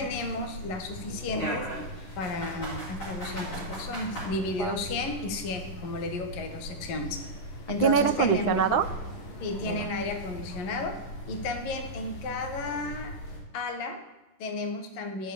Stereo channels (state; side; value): late; right; 11 ms